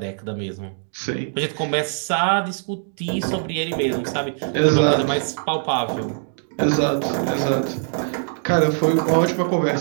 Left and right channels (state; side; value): silent; left; 64 dB below the other